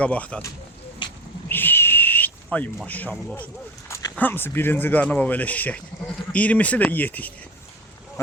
Ay maşallah olsun. Hamısı birinci qarnı belə şişək. 20'si də yetikdir.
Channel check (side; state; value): both; normal; correlation 0.28